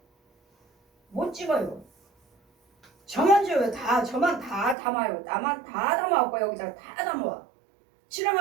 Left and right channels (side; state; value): left; drops out; at 4.8 s